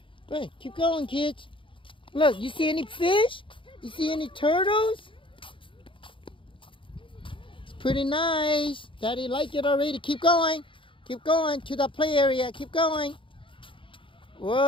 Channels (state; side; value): late; right; 0.25 ms